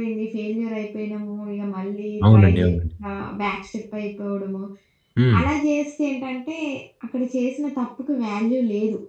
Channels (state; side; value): identical; both; correlation 1.00